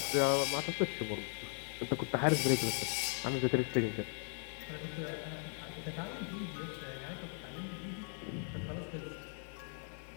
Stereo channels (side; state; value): right; silent; 52 dB below the other